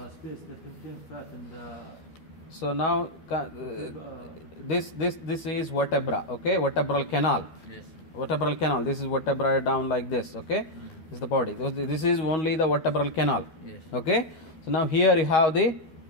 space that contains fat and so now this is vertebra. Okay, vertebral canal. Vertebral canal. This is vertebra down like this. Okay, this is the body. This is only the vertebral canal. Okay, so now here you have the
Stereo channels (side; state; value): right; late; 13 ms